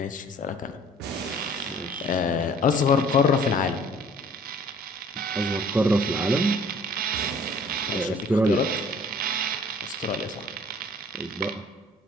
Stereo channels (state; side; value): normal; both; correlation 0.53